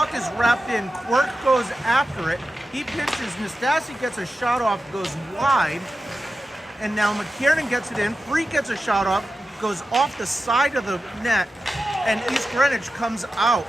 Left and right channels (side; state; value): both; normal; correlation 0.92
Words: is wrapped in. Quirk goes after it. He pinches. Nastasi gets a shot off, goes wide, and now McKiernan gets it in. Free gets a shot off, goes off the side of the net, and East Greenwich comes out.